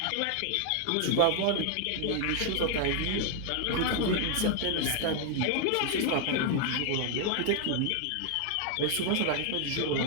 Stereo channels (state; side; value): different; both; correlation 0.00